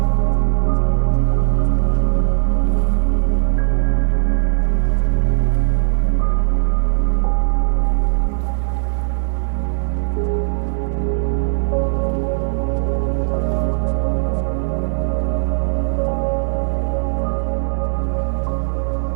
does always change the way you think. Kelly McGonigal, a psychologist and Stanford professor, and author of a book titled The Willpower Instinct, stated that it is generally futile to try to fix our thinking by clearing up anxiety or fears before we take an active step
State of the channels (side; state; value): left; silent; digital silence